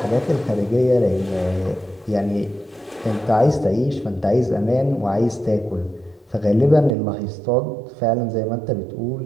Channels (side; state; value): left; drops out; at 7.0 s